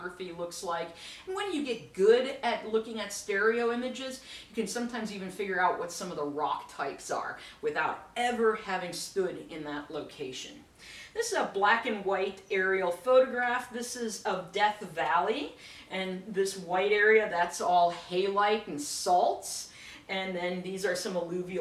looks like. And when you get good at looking at stereo images, you can sometimes even figure out what some of the rock types are without ever having stood in that location. This is a black and white aerial photograph. This is of Death Valley, and this white area, that's all halite and salts. And then these are some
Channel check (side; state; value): both; identical; correlation 1.00